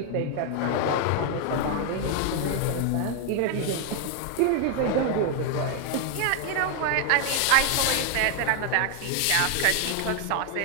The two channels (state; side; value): different; both; correlation 0.00